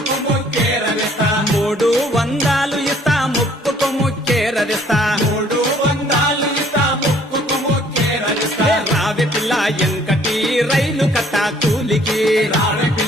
ముక్కేరవేస్తా 300 ఇస్తా ముక్కుకు ముచ్చేరదిస్తా 300 ఇస్తా ముక్కుకు ముక్కేరవేస్తా రావే పిల్ల ఎంకటి రైలు కట్ట కూలికి రావే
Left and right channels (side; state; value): both; normal; correlation 0.59